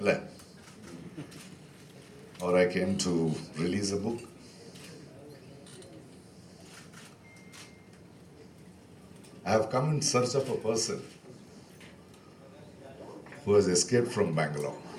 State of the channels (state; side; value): identical; both; correlation 1.00